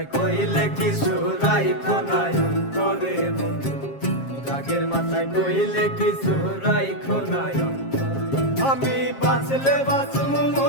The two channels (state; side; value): late; right; 7.4 ms